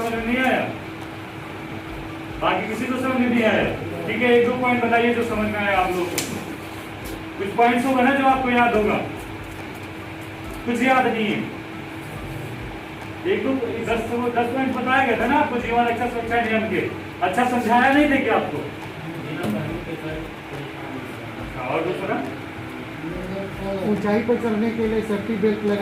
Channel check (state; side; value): identical; both; correlation 1.00